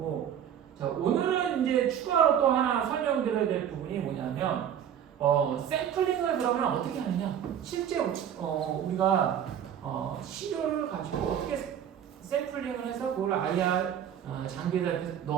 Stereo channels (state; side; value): quieter; left; 9.3 dB